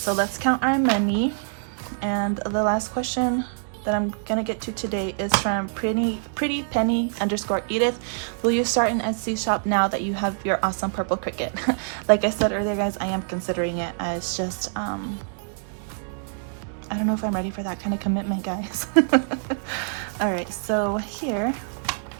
let's count our money. And the last question that I'm gonna get to today is from pretty penny _ Edith. Will you start an Etsy shop now that you have your awesome purple cricket? Like I said earlier, guys, I am considering it. It's just I don't know if I'm ready for that kind of commitment, guys. All right, so here,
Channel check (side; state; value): left; silent; digital silence